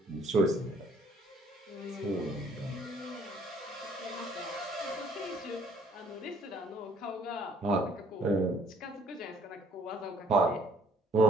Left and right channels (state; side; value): normal; both; correlation 0.61